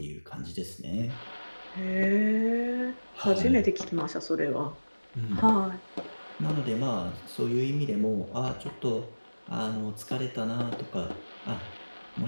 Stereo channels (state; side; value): inverted; both; correlation -1.00